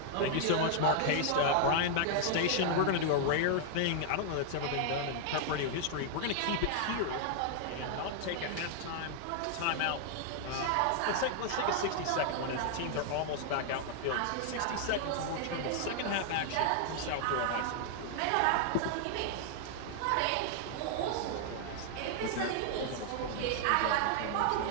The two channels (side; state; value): both; different; correlation 0.00